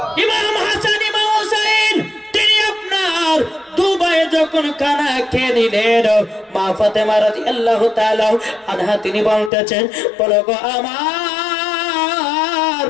ইমাম হাসান ইমাম হোসেন তিনি আপনার 2 ভাই যখন খানা খেয়ে নিলেন, মা ফাতেমা রাদিয়াল্লাহু তাআলা আনহা তিনি বলতেছেন বলো গো আমার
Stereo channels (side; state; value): right; drops out; at 9.5 s